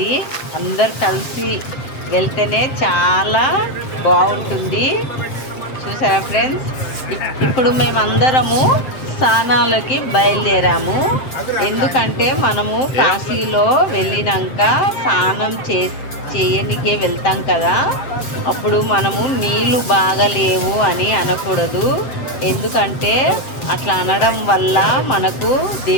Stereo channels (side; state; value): right; late; 7.7 ms